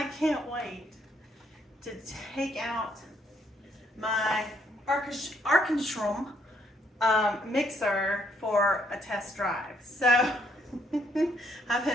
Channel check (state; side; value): normal; both; correlation 0.71